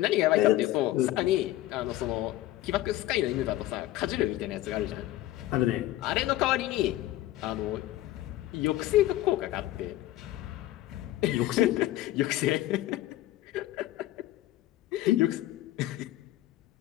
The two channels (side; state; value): right; quieter; 15.3 dB